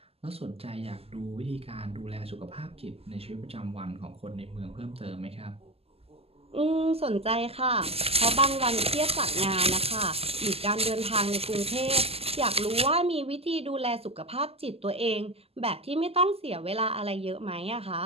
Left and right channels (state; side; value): late; left; 0.29 ms